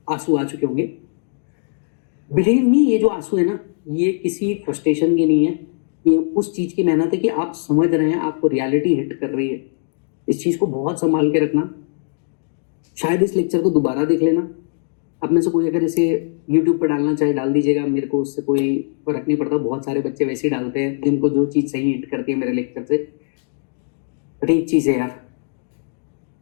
आंसू आ चुके होंगे। बिलीव मी, ये जो आंसू है ना ये किसी फ्रस्ट्रेशन की नहीं है, ये उस चीज की मेहनत है कि आप समझ रहे हैं, आपको रियलिटी हिट कर रही है। इस चीज को बहुत संभाल के रखना। शायद इस लेक्चर को दोबारा देख लेना। आप में से कोई अगर इसे यूट्यूब पर डालना चाहे डाल दीजिएगा, मेरे को उससे कोई फर्क नहीं पड़ता। बहुत सारे बच्चे वैसे ही डालते हैं जिनको जो चीज सही हिट करती है मेरे लेक्चर से। बट एक चीज है यार,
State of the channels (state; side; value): silent; right; digital silence